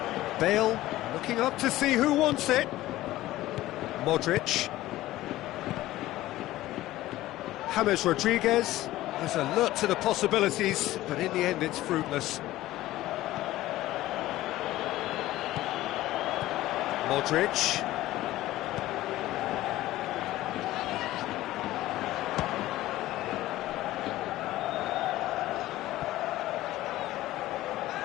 Bale looking up to see who wants it. Modric. James Rodriguez is alert to the possibilities, but in the end it's fruitless. Modric.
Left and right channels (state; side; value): quieter; right; 16.0 dB